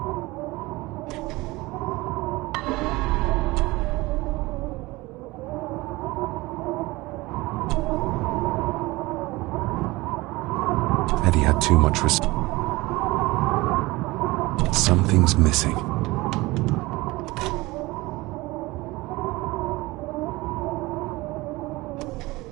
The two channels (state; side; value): quieter; left; 21.1 dB